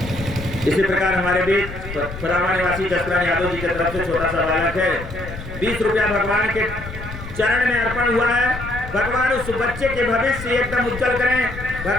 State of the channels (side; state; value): left; noise; rumble, 10 dB below the sound